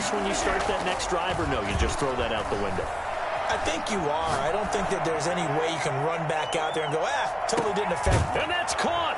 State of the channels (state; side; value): identical; both; correlation 1.00